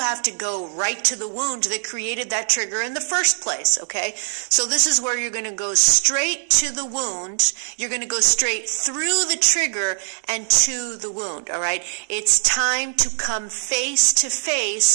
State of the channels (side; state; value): left; silent; digital silence